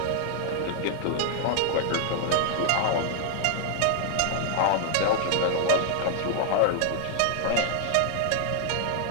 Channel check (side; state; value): both; different; correlation 0.00